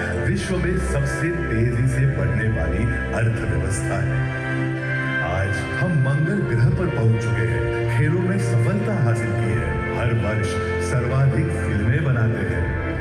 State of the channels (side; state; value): both; identical; correlation 1.00